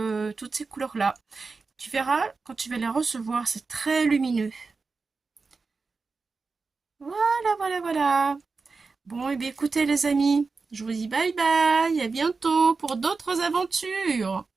toutes ces couleurs-là. Tu verras, quand tu vas les recevoir, c'est très lumineux. Voilà, voilà, voilà. Bon, et bien écoutez les amis, je vous dis bye bye, à bientôt pour d'autres aventures.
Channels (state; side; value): quieter; left; 4.4 dB